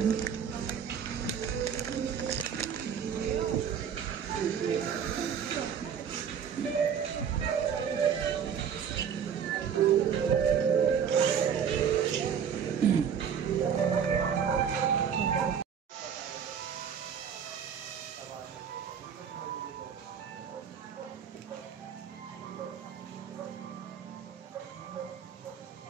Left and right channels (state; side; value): quieter; left; 7.6 dB